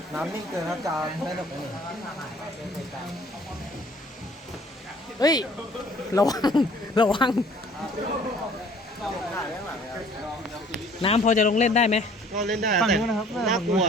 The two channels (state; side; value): normal; both; correlation 0.54